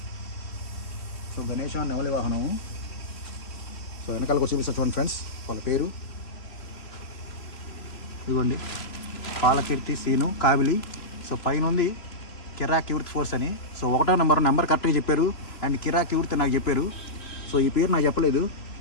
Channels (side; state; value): right; late; 3.0 ms